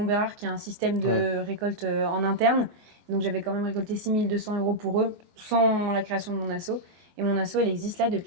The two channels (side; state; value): left; late; 23 ms